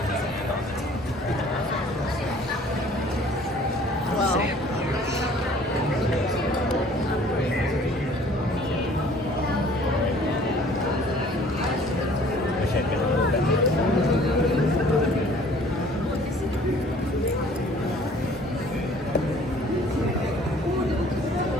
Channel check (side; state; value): both; normal; correlation 0.53